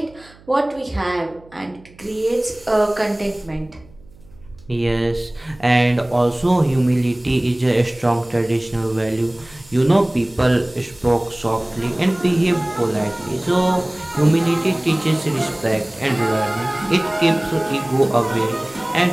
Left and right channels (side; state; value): right; noise; hum, 25 dB below the sound